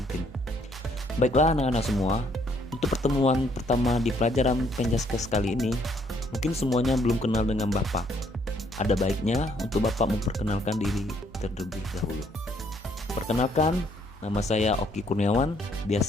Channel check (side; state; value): both; normal; correlation 0.67